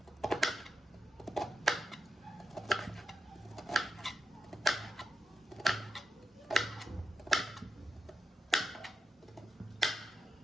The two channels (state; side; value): normal; both; correlation 0.88